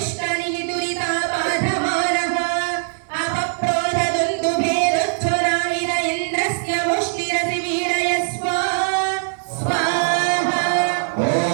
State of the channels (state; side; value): silent; left; digital silence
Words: दुरितापाधमानः अपप्रोधदुन्दुभेदुच्छुराविद इन्द्रस्य मुष्टिरसि वीडय स्वाहा ॐ